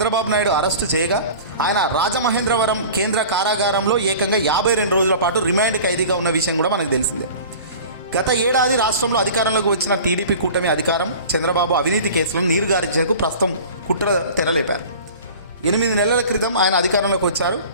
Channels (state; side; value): inverted; both; correlation -0.40